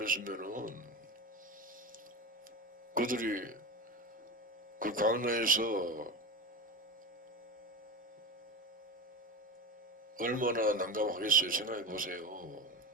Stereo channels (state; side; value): normal; both; correlation 0.23